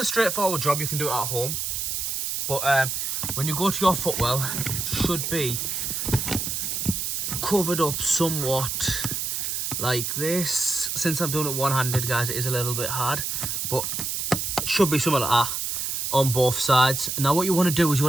straightforward job, you can do it at home. But when you go to your footwell, it should be covered up somewhat like this. Since I'm doing it one-handed, guys, it is a little bit hard. But it should be something like that on both sides. Now what you want to do is you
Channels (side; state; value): right; noise; hiss, 2 dB below the sound